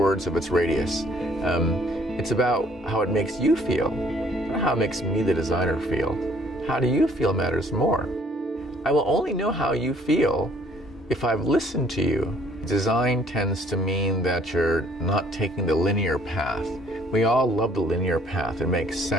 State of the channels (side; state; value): both; normal; correlation 0.60